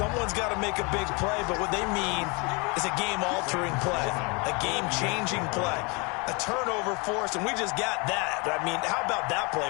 got to make a big play, but what they mean is a game-altering play, a game-changing play, a turnover force, and we just got that. I mean, how about that play,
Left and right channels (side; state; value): right; quieter; 29.9 dB